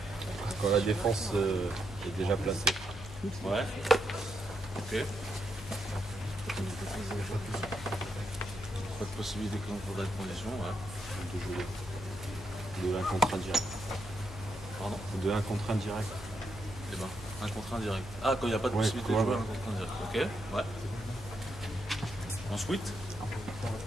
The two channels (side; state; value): left; noise; hum, 13 dB below the sound